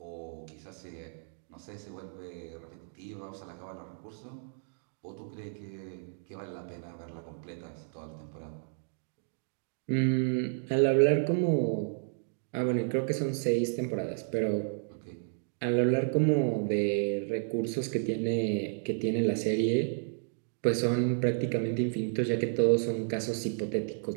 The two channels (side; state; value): left; silent; digital silence